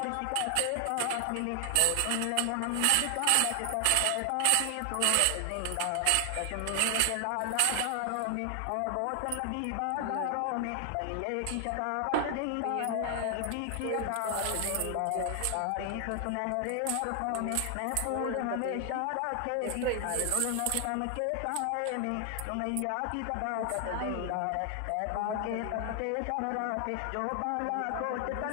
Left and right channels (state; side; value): different; both; correlation 0.00